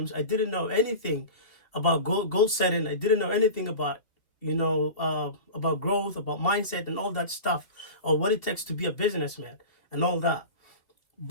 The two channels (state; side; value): late; right; 2.7 ms